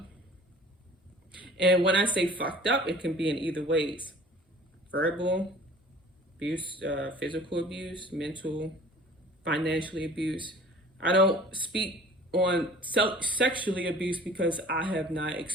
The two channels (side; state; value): both; normal; correlation 0.47